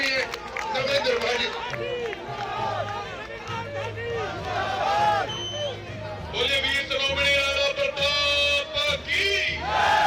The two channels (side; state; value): both; identical; correlation 1.00